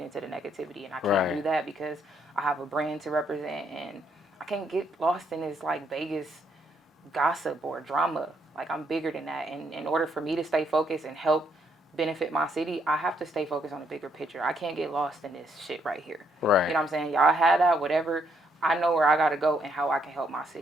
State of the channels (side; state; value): both; normal; correlation 0.73